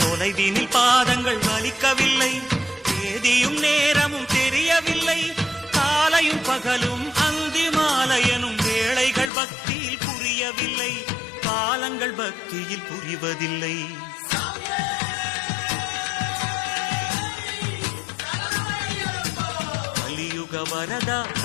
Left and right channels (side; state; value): right; drops out; at 9.3 s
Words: தொலைவினில் பாதங்கள் வலிக்கவில்லை தேதியும் நேரமும் தெரியவில்லை. காலையும் பகலும் அந்தி மாலையனும் வேளைகள் பக்தியில் புரியவில்லை. காலங்கள் பக்தியில் புரிவதில்லை. கலியுக வரதா